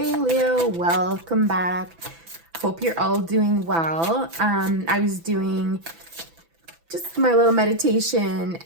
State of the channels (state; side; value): late; left; 6.0 ms